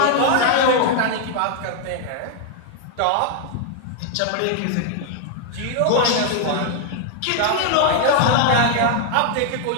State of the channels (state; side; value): different; both; correlation 0.00